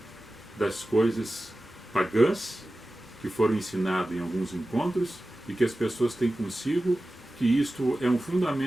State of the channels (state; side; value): normal; both; correlation 0.95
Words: das coisas pagãs que foram ensinadas em alguns encontros e que as pessoas têm consigo, que isto é um